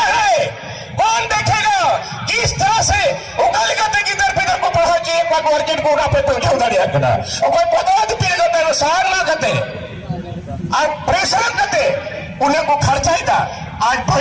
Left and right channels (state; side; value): identical; both; correlation 1.00